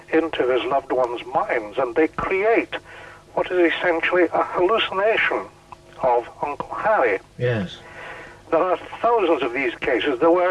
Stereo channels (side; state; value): both; identical; correlation 1.00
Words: into his loved ones' minds, and they create what is essentially a hallucination of Uncle Harry. Yes. There are thousands of these cases. There